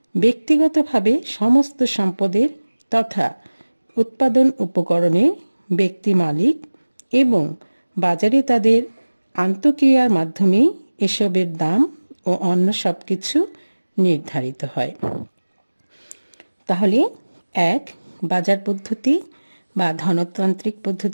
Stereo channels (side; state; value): both; inverted; correlation -1.00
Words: ব্যক্তিগতভাবে সমস্ত সম্পদের তথা উৎপাদন উপকরণের ব্যক্তি মালিক এবং বাজারে তাদের আন্তঃক্রিয়ার মাধ্যমে এসবের দাম ও অন্য সব কিছু নির্ধারিত হয়। তাহলে 1, বাজার পদ্ধতি বা ধনতান্ত্রিক